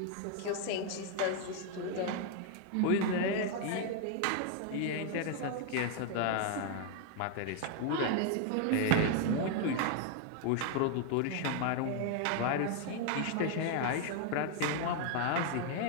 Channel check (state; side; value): different; both; correlation 0.00